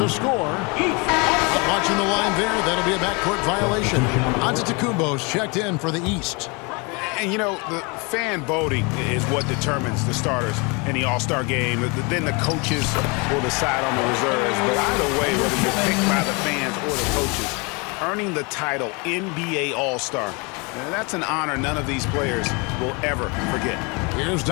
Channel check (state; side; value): quieter; right; 29.9 dB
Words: score. Watching the line there, that'll be a backcourt violation. Antetokounmpo's checked in for the East. And, you know, the fan voting is what determines the starters in the All-Star game. Then the coaches will decide on the reserves. But either way, whether you're picked by the fans or the coaches, earning the title NBA All-Star, that's an honor none of these players will ever forget. Here's